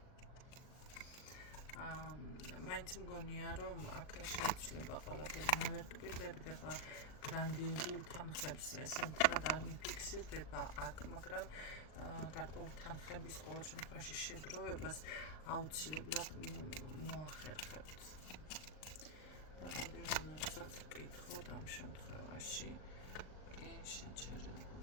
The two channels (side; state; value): right; late; 39 ms